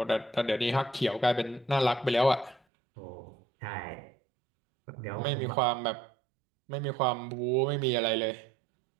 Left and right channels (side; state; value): left; drops out; at 2.6 s